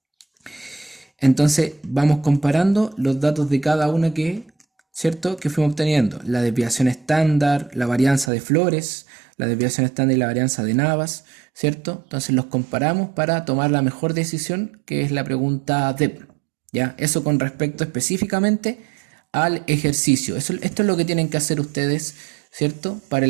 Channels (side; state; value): left; drops out; at 8.3 s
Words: Entonces vamos comparando los datos de cada una ¿cierto? Que fuimos obteniendo. La desviación estándar, la varianza de flores, la desviación estándar y la varianza de Navas, ¿cierto? Entonces los comparamos para tomar la mejor decisión, que es la pregunta DEP, ¿ya? Eso con respecto específicamente al ejercicio. Esto es lo que tienen que hacer ustedes, ¿cierto? Para